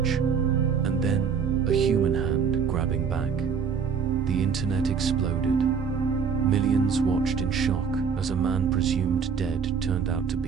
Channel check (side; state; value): left; quieter; 6.5 dB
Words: and then a human hand grabbing back. The internet exploded. Millions watched in shock as a man presumed dead turned out to